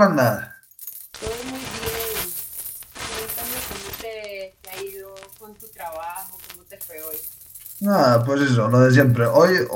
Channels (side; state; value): both; identical; correlation 1.00